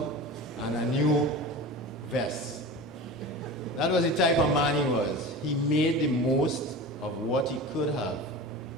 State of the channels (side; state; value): both; normal; correlation 0.32